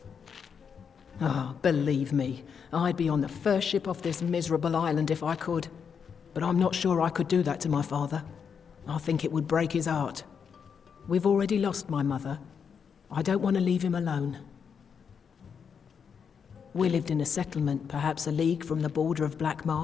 Ah, believe me, I'd be on the first ship off this miserable island if I could. But I'm not sure I could do that to my father. I think it would break his heart. We've already lost my mother. I don't want to leave him alone. We lived in a settlement, perhaps a league from the border of Black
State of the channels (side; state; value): right; quieter; 6.7 dB